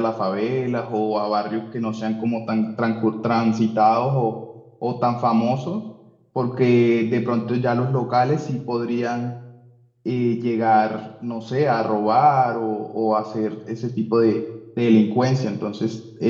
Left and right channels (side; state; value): both; identical; correlation 1.00